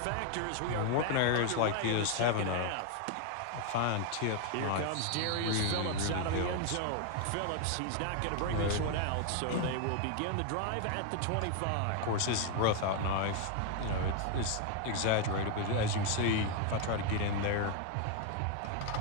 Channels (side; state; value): both; different; correlation 0.01